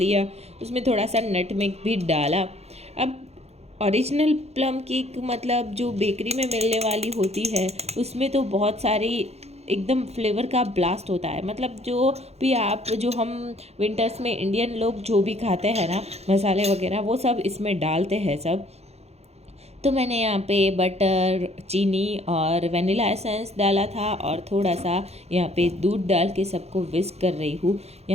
उसमें थोड़ा सा नटमेग भी डाला। अब ओरिजिनल प्लम केक मतलब जो बेकरी में मिलने वाली होती है, उसमें तो बहुत सारी एकदम फ्लेवर का ब्लास्ट होता है। मतलब जो भी आप जो हम विंटर्स में इंडियन लोग जो भी खाते हैं ना मसाले वगैरह, वो सब इसमें डालते हैं सब। तो मैंने यहाँ पे बटर, चीनी और वनीला एसेंस डाला था, और थोड़ा सा यहाँ पे दूध डाल के सबको विस्क कर रही हूँ।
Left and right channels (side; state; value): left; late; 0.31 ms